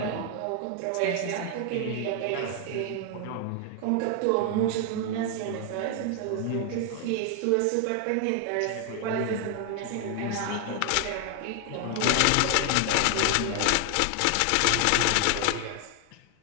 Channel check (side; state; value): both; different; correlation 0.00